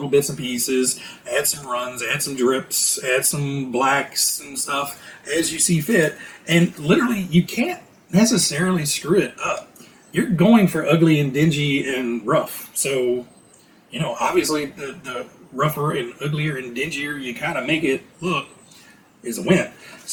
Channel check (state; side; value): identical; both; correlation 1.00